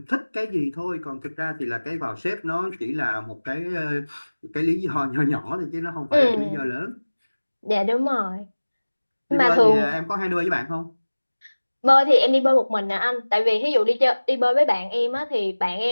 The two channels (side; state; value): both; inverted; correlation -1.00